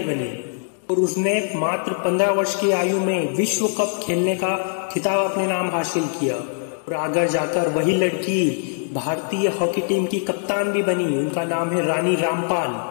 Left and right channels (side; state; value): right; silent; digital silence